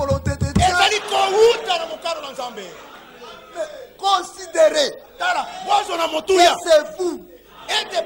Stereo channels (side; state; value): both; identical; correlation 1.00